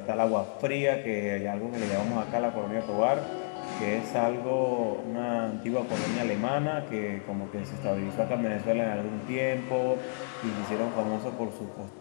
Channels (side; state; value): right; silent; digital silence